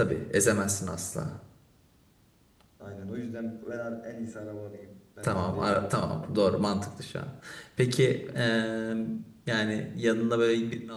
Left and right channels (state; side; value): identical; both; correlation 1.00